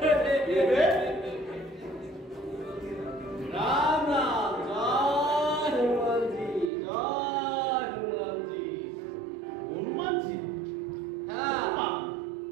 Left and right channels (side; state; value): left; drops out; at 6.7 s